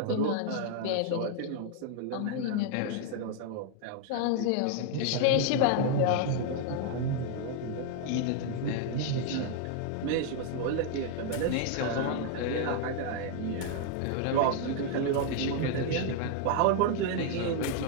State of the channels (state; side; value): different; both; correlation 0.00